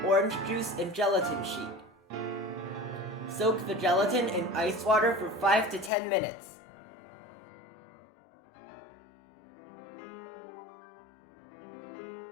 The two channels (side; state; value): right; drops out; at 5.9 s